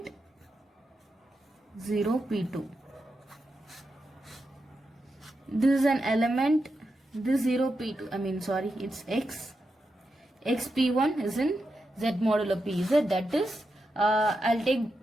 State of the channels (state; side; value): normal; both; correlation 0.87